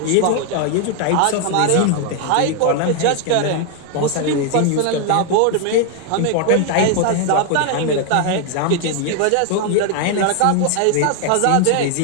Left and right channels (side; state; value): both; different; correlation 0.00